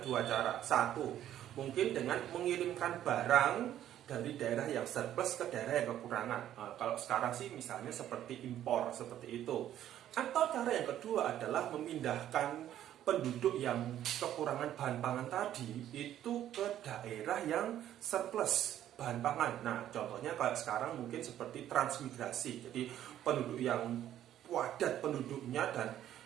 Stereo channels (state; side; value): quieter; left; 11.6 dB